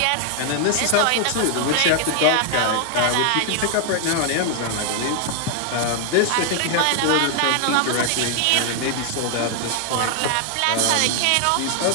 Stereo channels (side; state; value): both; different; correlation 0.00